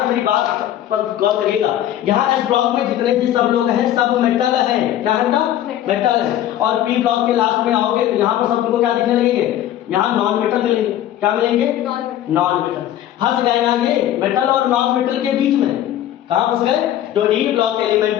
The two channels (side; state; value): right; quieter; 12.1 dB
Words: मेरी बात पर गौर करिएगा। यहाँ एस ब्लॉक में जितने भी सब लोग हैं सब मेटल है। क्या है बेटा? मेटल है। और पी ब्लॉक के लास्ट में आओगे तो यहाँ पर सब तुमको क्या दिखने लगेंगे? यहाँ नॉन मेटल मिलेंगे। क्या मिलेंगे? Non metal. फंस गए ना ये मेटल और नॉन मेटल के बीच में? कहाँ फंस गए? जो डी ब्लॉक एलिमेंट